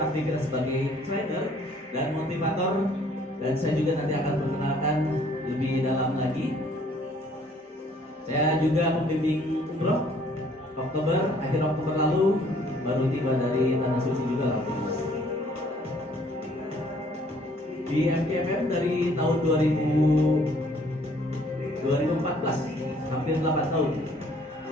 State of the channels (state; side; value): normal; both; correlation 0.60